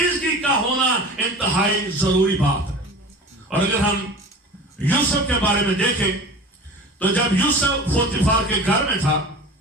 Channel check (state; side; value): normal; both; correlation 0.37